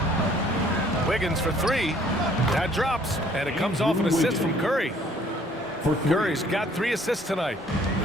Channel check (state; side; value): normal; both; correlation 0.59